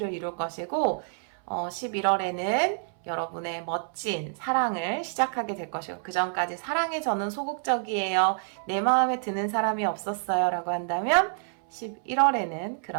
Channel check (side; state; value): left; silent; 59 dB below the other